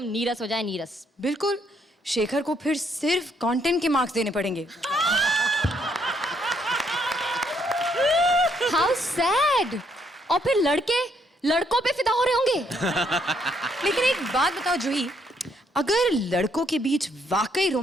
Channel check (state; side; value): normal; both; correlation 0.71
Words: नीरस हो जाए, नीरस। बिल्कुल, शेखर को फिर सिर्फ कंटेंट के मार्क्स देने पड़ेंगे। How sad. और फिर लड़के लड़कों पे फिदा हो रहे होंगे। लेकिन एक बात बताओ जूही, अगर लड़कों के बीच वाकई